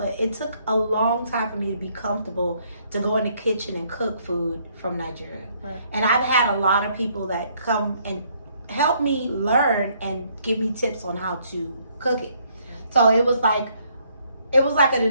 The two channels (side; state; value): both; inverted; correlation -0.68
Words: it took a long time for me to be comfortable to go in the kitchen and cook food from Nigeria. Right. And I've had a lot of people that come and help me learn and give me tips on how to cook it. So it was like a